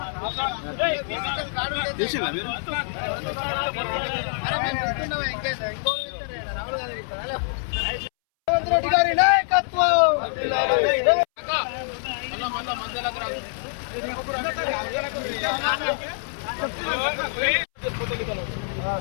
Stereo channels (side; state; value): right; silent; 62 dB below the other